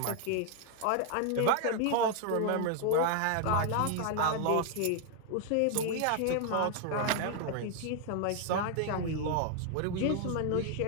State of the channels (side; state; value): both; different; correlation 0.00